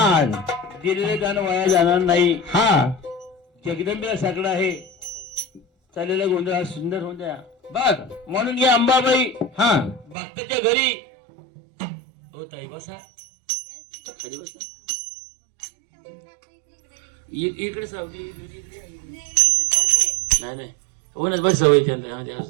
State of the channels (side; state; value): left; drops out; at 10.2 s